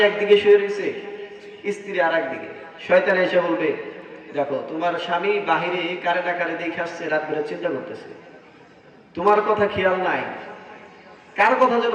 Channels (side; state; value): both; identical; correlation 1.00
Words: একদিকে শুয়ে রয়েছে, স্ত্রী আর একদিকে। শয়তান এসে বলবে, দেখো তোমার স্বামী বাহিরে কারে না কারে দেখে আসছে, রাত বেলা চিন্তা করতেছে, তোমার কথা খেয়াল নাই, কার কথা যেন